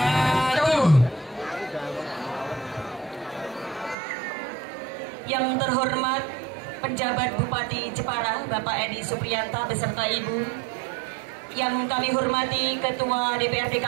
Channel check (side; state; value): left; drops out; at 4.0 s